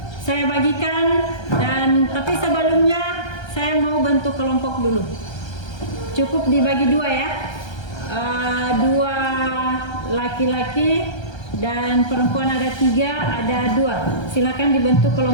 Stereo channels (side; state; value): right; late; 1.3 ms